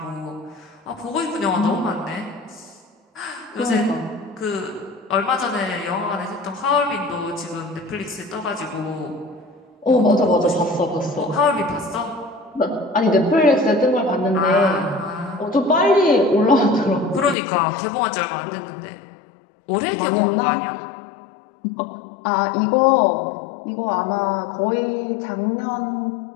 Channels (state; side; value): drops out; right; at 17.4 s